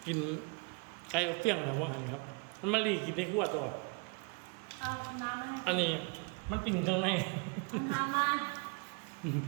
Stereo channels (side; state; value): left; quieter; 32.5 dB